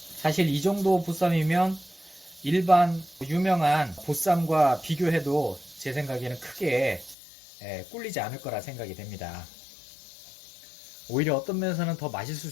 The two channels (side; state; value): right; drops out; at 7.2 s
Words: 사실 이 정도 보쌈이면 일반 유명한 보쌈과 비교해도 제 생각에는 크게 꿀리지 않을 거라 생각이 됩니다. 오히려 어떤 면에서는 더 맛있을